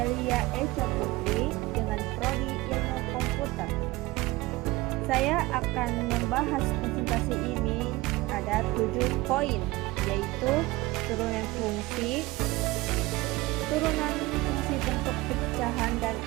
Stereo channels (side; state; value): left; quieter; 20.3 dB